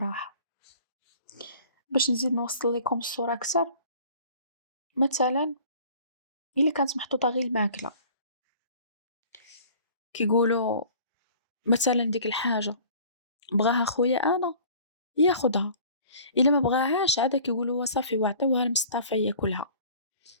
باش نزيد نوصل لكم الصورة أكثر، مثلا إلا كانت محطوطة غير الماكلة كيقولوا مثلا ديك الحاجة بغاها خويا أنا ياخدها، إلا ما بغاهاش عاد كيقولوا صافي وعطيوها لمصطفى ياكلها.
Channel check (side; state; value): both; inverted; correlation -0.48